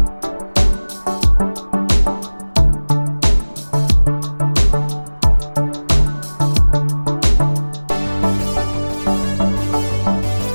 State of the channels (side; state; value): both; inverted; correlation -1.00